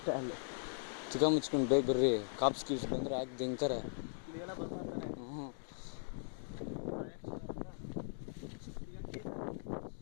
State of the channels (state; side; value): silent; right; digital silence